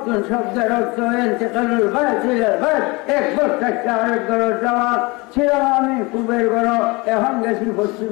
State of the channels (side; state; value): right; quieter; 25.3 dB